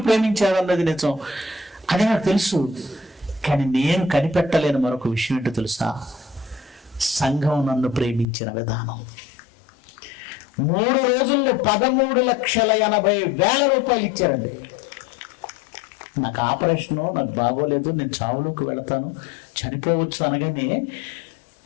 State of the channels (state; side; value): drops out; right; at 8.2 s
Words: ప్రేమించారన్నది నిజం, అది నాకు తెలుసు. కానీ నేను కనిపెట్టలేని మరొక విషయం ఏంటో తెలుసా? సంఘం నన్ను ప్రేమించిన విధానం. 3 రోజుల్లో 13,80,000 రూపాయలు ఇచ్చారండి. నాకు ఆపరేషను, నాకు బాగోలేదు, నేను చావులోకి వెళతాను, చనిపోవచ్చు అనగానే